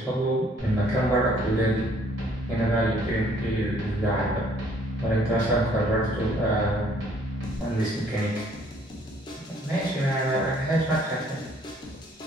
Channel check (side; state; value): both; normal; correlation 0.61